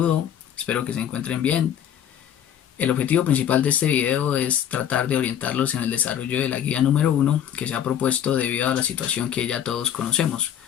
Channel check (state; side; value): quieter; right; 9.7 dB